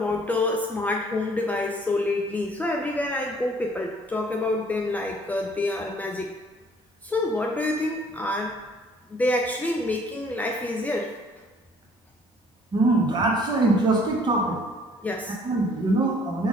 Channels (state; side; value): normal; both; correlation 0.58